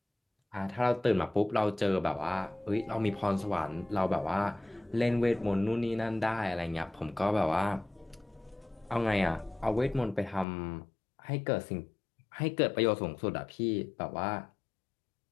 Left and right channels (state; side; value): drops out; right; at 10.5 s